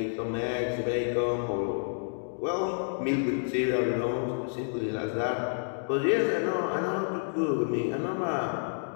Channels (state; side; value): silent; right; digital silence